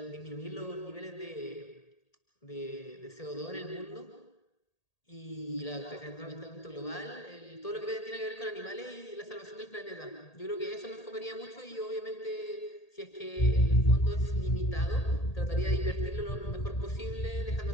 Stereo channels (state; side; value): late; right; 1.8 ms